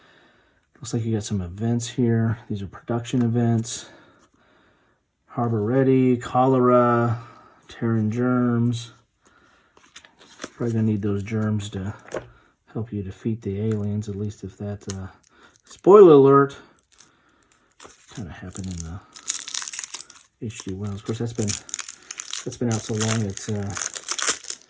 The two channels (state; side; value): identical; both; correlation 1.00